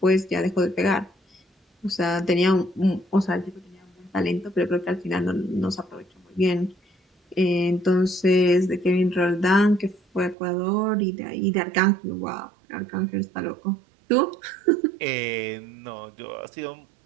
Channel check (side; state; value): left; drops out; at 10.4 s